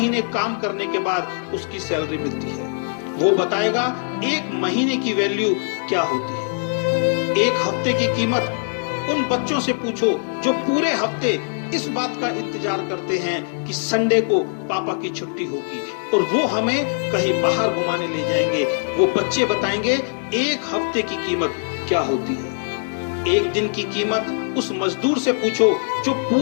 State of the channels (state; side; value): silent; right; digital silence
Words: काम करने के बाद उसकी सैलरी मिलती है। वो बताएगा 1 महीने की वैल्यू क्या होती है। 1 हफ्ते की कीमत उन बच्चों से पूछो जो पूरे हफ्ते इस बात का इंतजार करते हैं कि संडे को पापा की छुट्टी होगी और वो हमें कहीं बाहर घुमाने ले जाएंगे। वो बच्चे बताएंगे 1 हफ्ते की कीमत क्या होती है। 1 दिन की कीमत उस मजदूर से पूछो जो